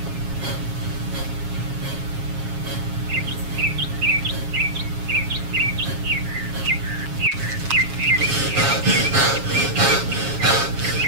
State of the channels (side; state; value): left; late; 7.2 ms